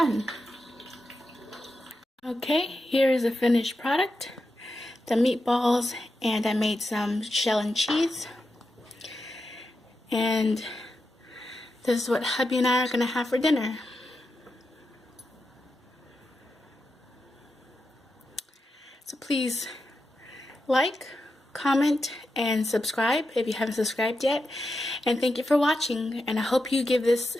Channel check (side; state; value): both; normal; correlation 0.88